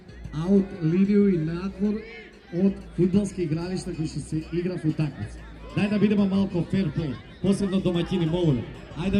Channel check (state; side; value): identical; both; correlation 1.00